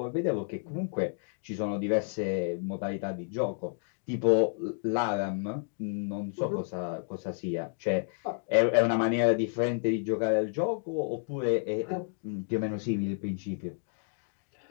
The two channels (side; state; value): right; silent; digital silence